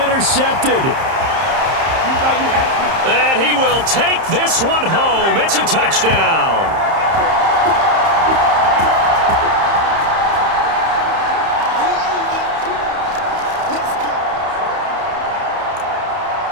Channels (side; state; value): left; late; 30 ms